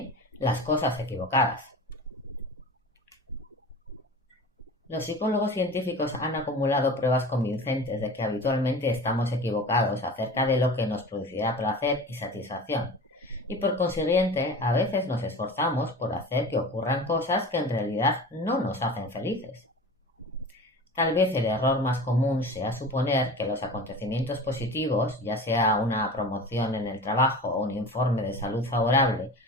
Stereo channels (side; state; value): both; normal; correlation 0.35